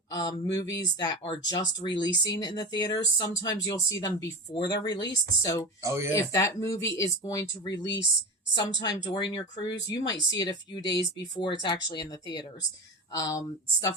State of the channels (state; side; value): normal; both; correlation 0.25